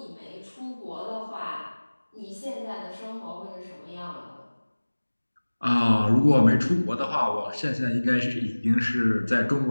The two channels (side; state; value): both; inverted; correlation -1.00